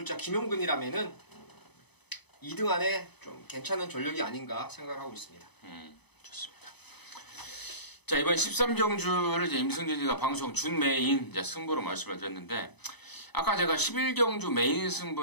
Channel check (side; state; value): right; late; 0.99 ms